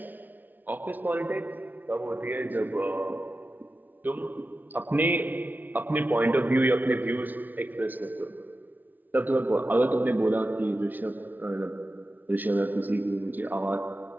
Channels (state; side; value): late; left; 0.084 ms